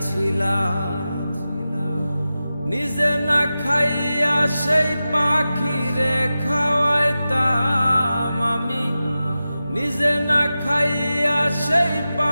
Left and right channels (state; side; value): inverted; both; correlation -0.93